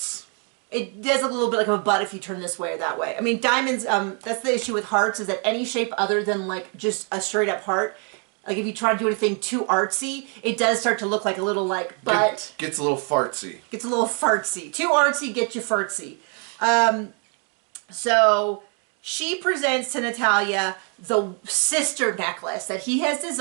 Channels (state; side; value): quieter; left; 39.0 dB